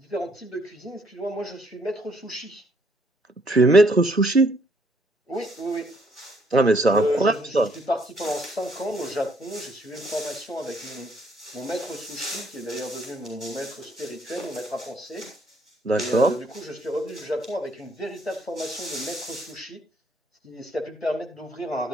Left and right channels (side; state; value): both; normal; correlation 0.67